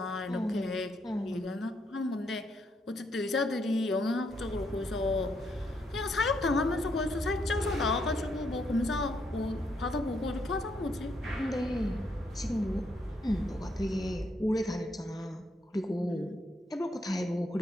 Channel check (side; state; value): both; normal; correlation 0.75